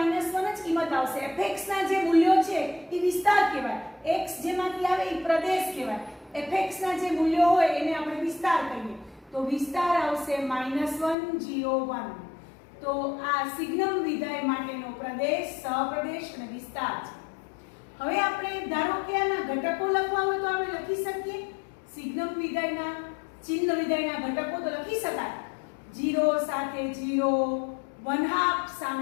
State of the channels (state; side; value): drops out; right; at 11.2 s